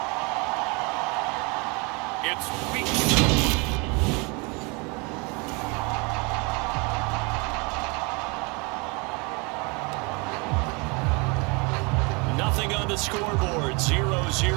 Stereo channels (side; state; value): left; quieter; 29.7 dB